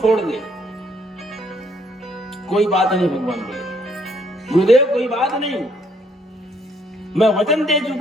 दे। कोई बात नहीं, भगवान बोले गुरुदेव कोई बात नहीं, मैं वचन दे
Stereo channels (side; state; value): both; normal; correlation 0.68